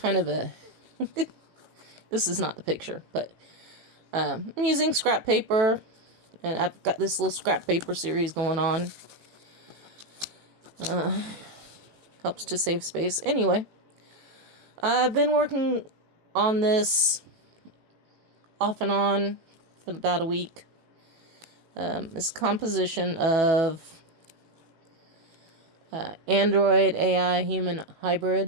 of a... This is not the picture, but I'm using scrap paper, and I've got this little scrap paper series going on. Helps to save space. Anyway, I've been working on this off and on for about a week. This composition of Android AI human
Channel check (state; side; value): late; left; 18 ms